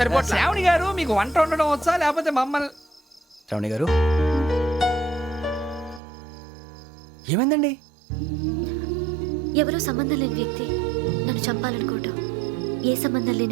శ్రావణి గారు, మీకు వంట వండడం వచ్చా లేకపోతే మమ్మల్ని? శ్రావణి గారు ఏమైందండి? ఎవరో సంబంధం లేని వ్యక్తి నన్ను చంపాలనుకోవటం, ఏ సంబంధం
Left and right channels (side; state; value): left; drops out; at 6.0 s